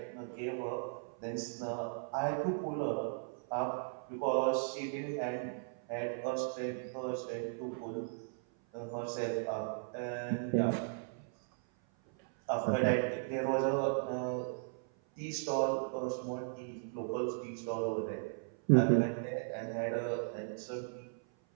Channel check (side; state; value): left; silent; 53 dB below the other